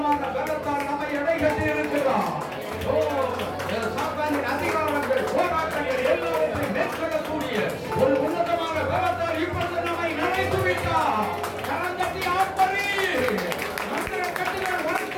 பலத்தால் நம்மை எடைகட்டி இருக்கிறார். ஓ, சாத்தானின் அதிகாரங்கள், போராட்டங்கள் எல்லாவற்றையும் மேற்கொள்ளக்கூடிய ஒரு உன்னதமான பலத்தால் இப்பொழுது நம்மை நினைத்து விட்டார். கரந்தட்டி ஆர்ப்பரி. மந்திர கட்டுகள்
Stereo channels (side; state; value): both; identical; correlation 1.00